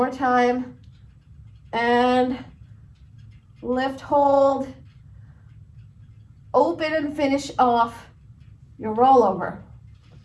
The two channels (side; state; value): both; identical; correlation 1.00